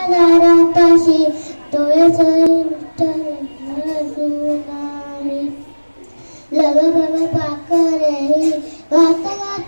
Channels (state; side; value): inverted; both; correlation -1.00